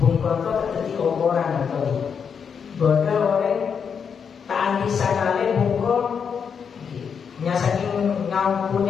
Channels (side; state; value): right; quieter; 6.7 dB